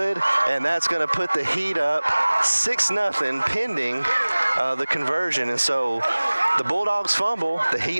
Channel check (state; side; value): inverted; both; correlation -1.00